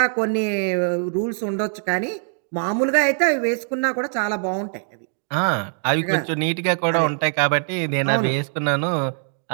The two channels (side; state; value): left; silent; 55 dB below the other